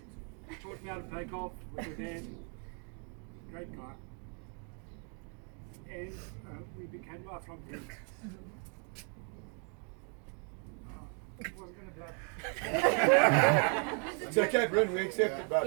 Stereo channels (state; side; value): quieter; left; 39.9 dB